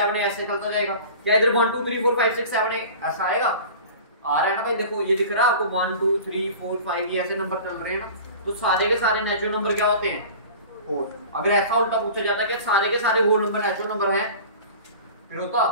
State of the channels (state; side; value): inverted; both; correlation -0.39